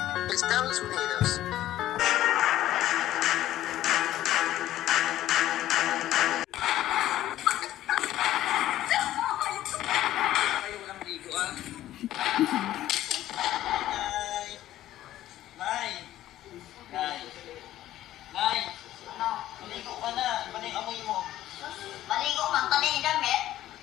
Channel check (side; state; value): right; quieter; 13.7 dB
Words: Estados Unidos. Kayo walang ligo ah. Nay! Nay! Nay! Nay! Ano? Maligo ka na. Iba na yung amoy mo. Maligo man ka din damit.